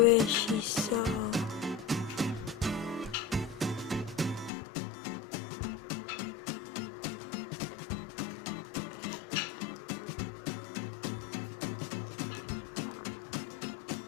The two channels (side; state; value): right; drops out; at 4.5 s